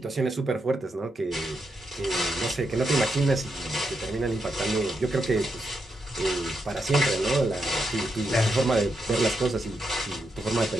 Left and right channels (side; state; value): both; normal; correlation 0.83